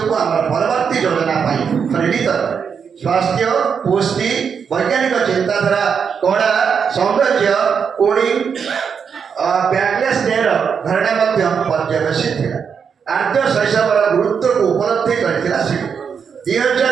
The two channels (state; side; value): quieter; left; 6.6 dB